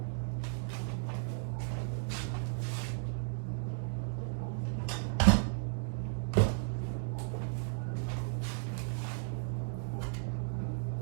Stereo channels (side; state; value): left; silent; digital silence